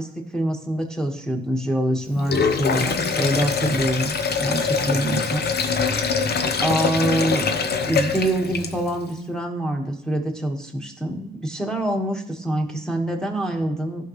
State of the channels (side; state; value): both; normal; correlation 0.60